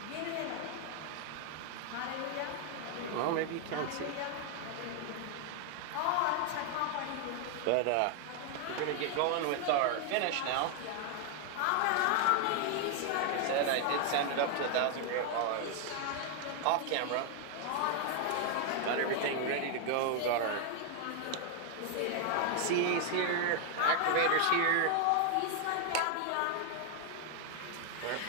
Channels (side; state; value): both; different; correlation 0.00